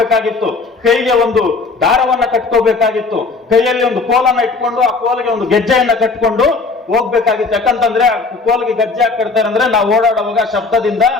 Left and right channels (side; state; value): right; quieter; 4.1 dB